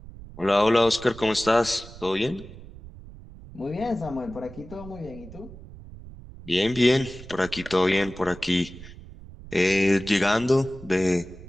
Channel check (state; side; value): noise; right; rumble, 16 dB below the sound